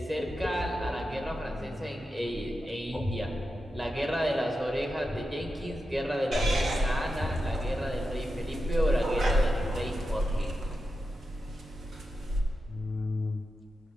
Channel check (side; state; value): both; normal; correlation 0.89